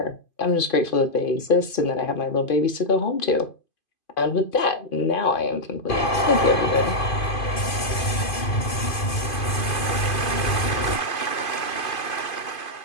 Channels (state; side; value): late; right; 2.5 ms